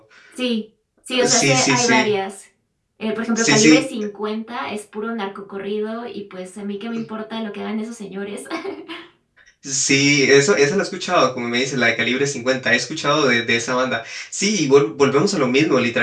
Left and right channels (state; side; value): identical; both; correlation 1.00